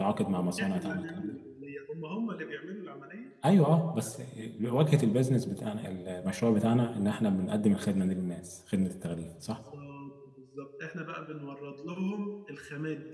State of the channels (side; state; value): both; identical; correlation 1.00